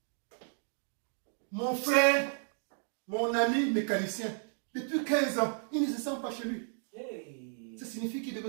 Mon frère, mon ami mécanicien, depuis 15 ans, il ne se sent pas chez lui. Hey. Ça signifie qu'il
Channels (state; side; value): silent; left; 56 dB below the other